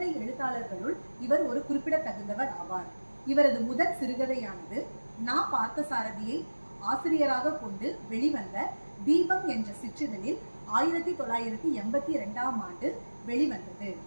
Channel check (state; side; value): inverted; both; correlation -1.00